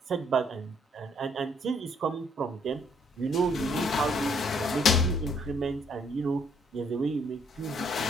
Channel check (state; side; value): normal; both; correlation 0.66